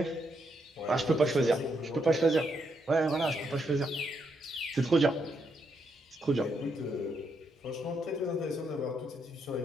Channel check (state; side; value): normal; both; correlation 0.78